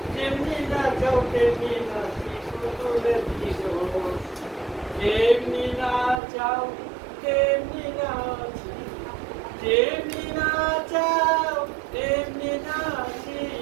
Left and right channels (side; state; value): left; drops out; at 6.2 s